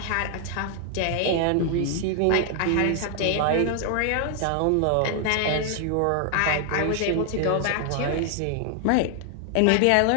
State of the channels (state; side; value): different; both; correlation 0.00